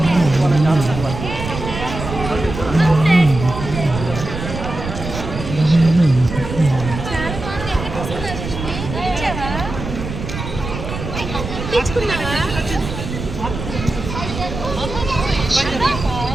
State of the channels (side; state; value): right; noise; rumble, 7 dB below the sound